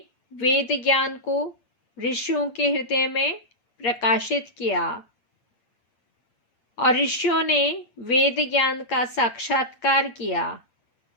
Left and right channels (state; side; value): late; right; 8.7 ms